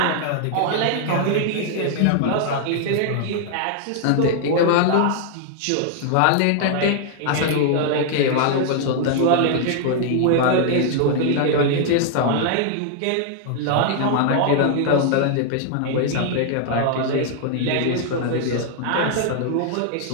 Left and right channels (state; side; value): different; both; correlation 0.00